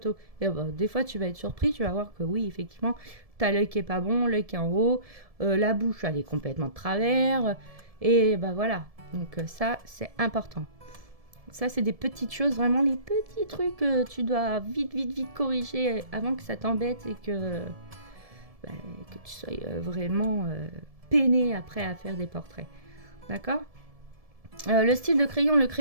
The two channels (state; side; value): late; left; 1.7 ms